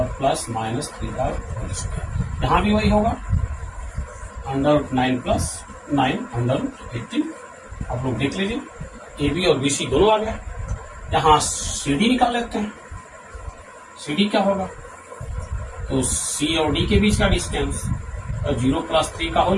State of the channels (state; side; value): identical; both; correlation 1.00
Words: प्लस -3 का होल स्क्वायर। यहाँ भी वही होगा, √9 + 9 √18। आप लोग देख लीजिए ए बी और BC दोनों आ गए। यहाँ CD निकाल लेते हैं। CD क्या होगा? तो C और D के बीच का डिस्टेंस 0 + 3 का